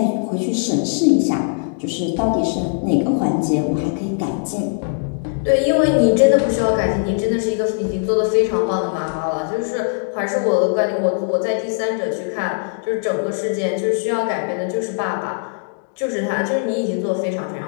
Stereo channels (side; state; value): right; silent; digital silence